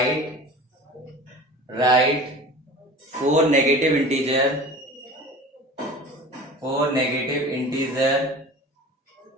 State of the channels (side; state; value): both; normal; correlation 0.38